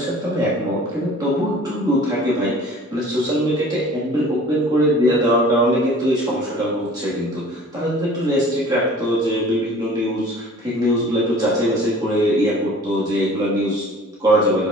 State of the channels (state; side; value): normal; both; correlation 0.47